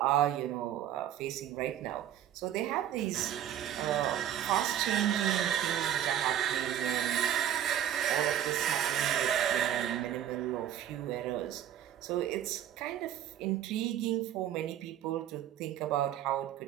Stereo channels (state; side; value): quieter; left; 10.9 dB